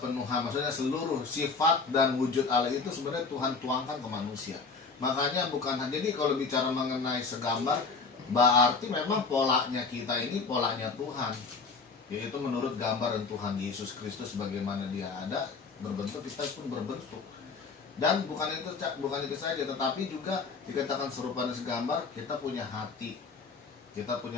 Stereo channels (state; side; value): quieter; right; 4.6 dB